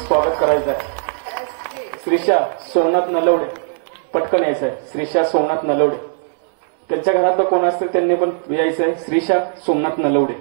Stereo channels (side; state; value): left; silent; 65 dB below the other